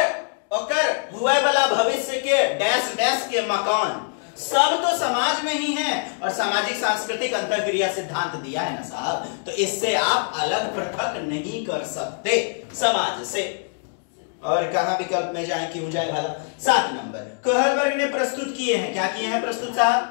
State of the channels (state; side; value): silent; right; 57 dB below the other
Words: ओकर हुए वाला भविष्य के डैश डैश के मकान, सब तो समाज में ही है। और सामाजिक सांस्कृतिक अंतरक्रिया सिद्धांत दिया है ना साहब, तो इससे आप अलग पृथक नहीं कर सकते समाज से। और कहां विकल्प में जाए, क्यों जाए भला? 7 नंबर, कहलबर्ग ने प्रस्तुत किए हैं, क्या किए हैं प्रस्तुत साहब?